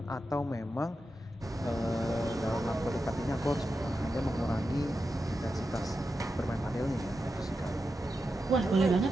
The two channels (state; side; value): normal; both; correlation 0.89